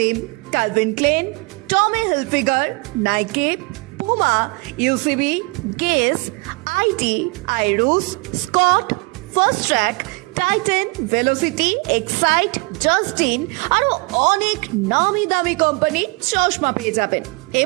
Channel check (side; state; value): left; quieter; 28.8 dB